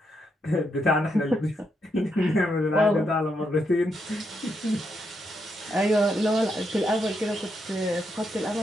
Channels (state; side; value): normal; both; correlation 0.80